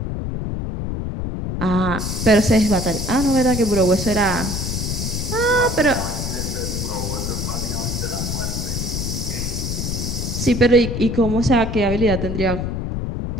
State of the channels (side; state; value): left; noise; rumble, 3 dB below the sound